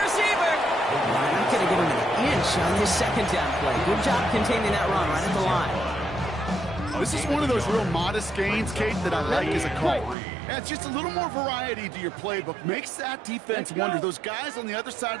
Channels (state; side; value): drops out; left; at 10.2 s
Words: receiver. Not going to give him an inch on this 2nd down play. Good job containing that run right at the line. This is one of those real modest gains, Kate, that I like as a call. Adds just a little more variety to your playbook. Makes that defense wonder. Those guys on the other side